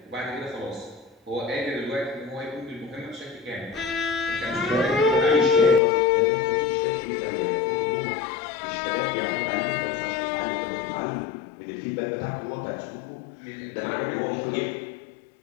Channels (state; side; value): drops out; right; at 5.8 s